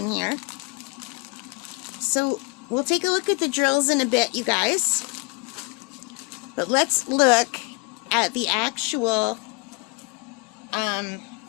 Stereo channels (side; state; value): right; quieter; 30.3 dB